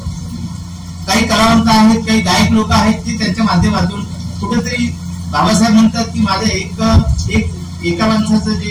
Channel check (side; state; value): both; identical; correlation 1.00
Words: काही कलावंत आहेत, काही गायक लोक आहेत की त्यांच्या माध्यमातून कुठेतरी बाबासाहेब म्हणतात की माझं एका माणसाचं